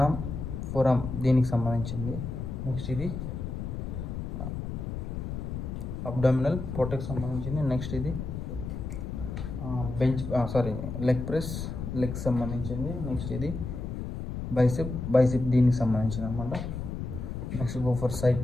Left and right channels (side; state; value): left; noise; rumble, 5 dB below the sound